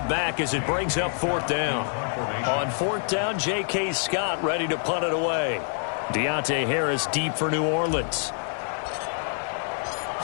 back as it brings up fourth down. On fourth down, J.K. Scott ready to punt it away. Deontay Harris deep for New Orleans.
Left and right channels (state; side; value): silent; right; 61 dB below the other